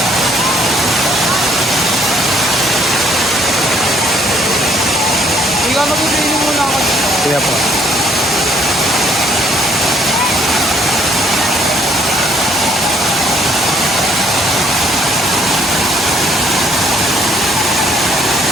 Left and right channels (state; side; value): normal; both; correlation 0.64